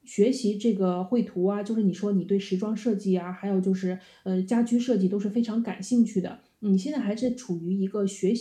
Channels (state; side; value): identical; both; correlation 1.00